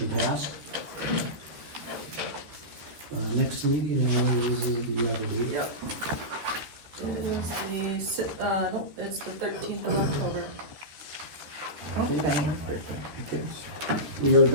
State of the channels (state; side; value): late; left; 13 ms